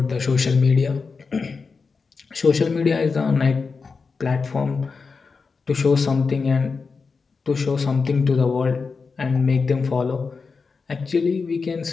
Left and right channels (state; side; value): quieter; right; 4.8 dB